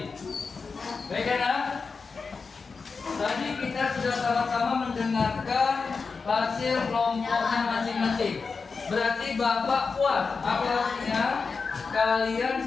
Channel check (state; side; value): quieter; right; 4.8 dB